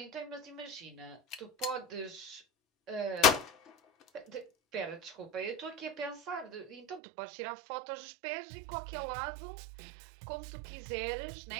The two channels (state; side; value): drops out; left; at 7.0 s